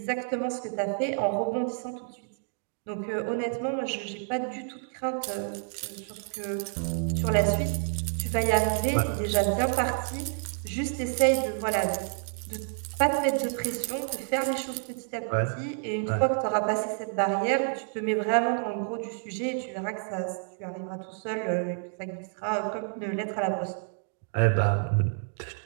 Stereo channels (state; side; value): silent; left; digital silence